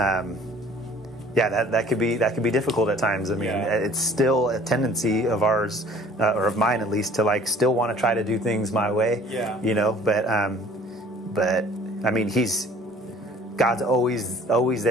that could be difficult at times. I mean, it's still a tendency of ours, or of mine at least, to like still want to try to do things my way. But I mean, God's always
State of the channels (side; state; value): both; normal; correlation 0.52